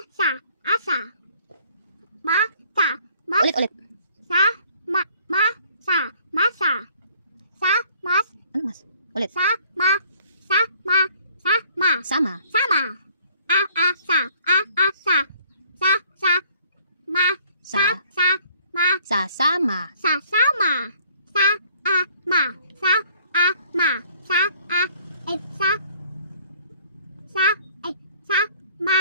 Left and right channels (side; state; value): both; inverted; correlation -0.57